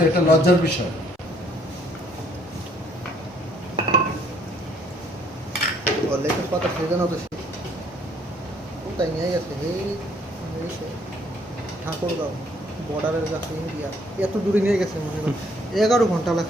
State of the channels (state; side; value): normal; both; correlation 0.64